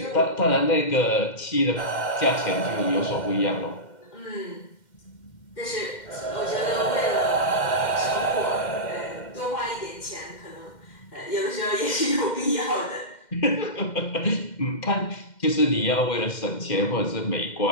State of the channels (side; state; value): right; late; 2.1 ms